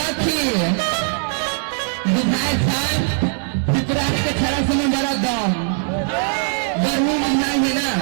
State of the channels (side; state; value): left; silent; 60 dB below the other